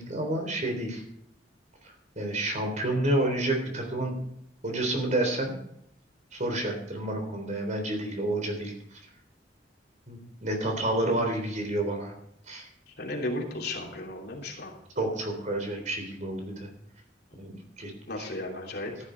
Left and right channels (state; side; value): normal; both; correlation 0.35